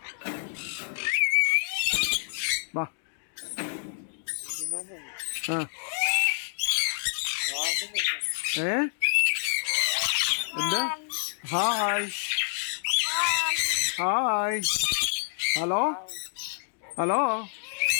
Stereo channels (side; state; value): right; silent; digital silence